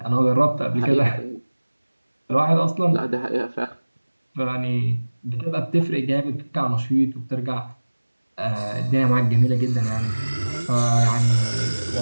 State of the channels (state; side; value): inverted; both; correlation -1.00